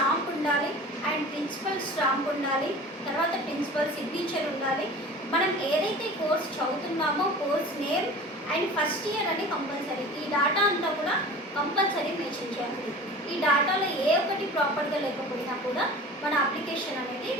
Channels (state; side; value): normal; both; correlation 0.39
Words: ఉండాలి అండ్ ప్రిన్సిపల్ స్టాంప్ ఉండాలి, తర్వాత ప్రిన్సిపల్ సిగ్నేచర్ ఉండాలి. మనం ఏదైతే కోర్స్ చదువుతున్నామో course name and first year అని కంపల్సరీ. ఈ డేటా అంతా కూడా కంపల్సరీ మెన్షన్ చేయాలి. ఈ డేటాలో ఏ ఒక్కటి ప్రాపర్గా లేకపోయినా కూడా మన అప్లికేషన్ అనేది